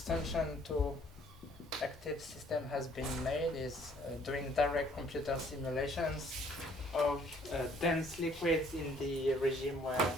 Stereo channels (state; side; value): normal; both; correlation 0.61